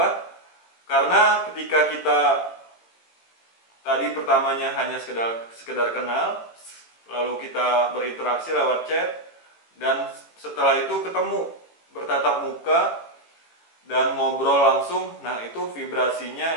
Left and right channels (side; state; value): right; late; 18 ms